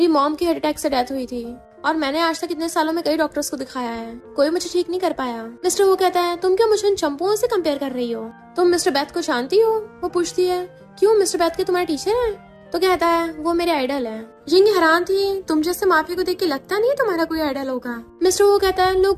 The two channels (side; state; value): both; identical; correlation 1.00